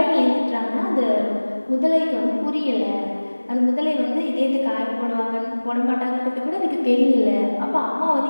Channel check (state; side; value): inverted; both; correlation -1.00